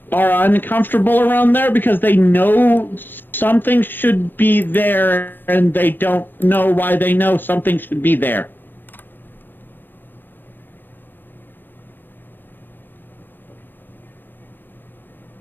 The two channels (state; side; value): late; right; 0.094 ms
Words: are uncomfortable around there because they know something should be there and they don't know why they know something should be there.